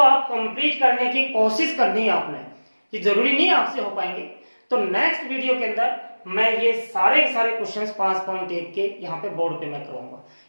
कंप्लीट करने की कोशिश करनी है आपने। ये जरूरी नहीं आपसे हो पाएंगे, तो नेक्स्ट वीडियो के अंदर मैं ये सारे क्वेश्चंस 5.1 के यहाँ पे बोर्ड पे मैं करूंगा।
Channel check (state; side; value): inverted; both; correlation -1.00